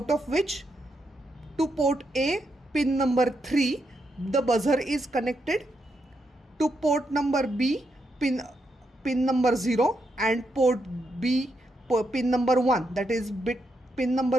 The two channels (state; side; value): normal; both; correlation 0.81